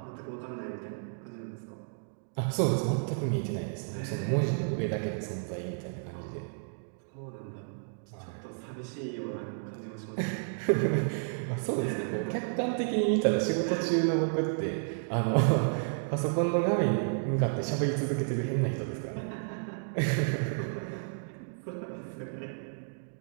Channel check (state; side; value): silent; left; digital silence